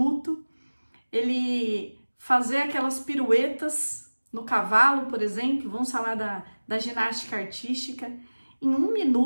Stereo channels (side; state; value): both; inverted; correlation -1.00